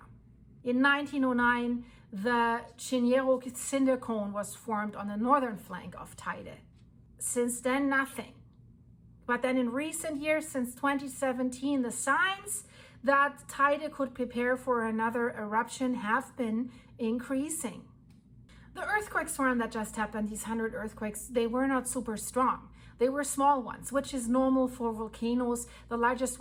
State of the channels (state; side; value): identical; both; correlation 1.00